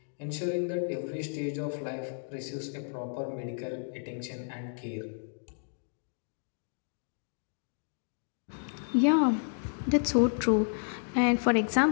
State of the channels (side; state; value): right; silent; digital silence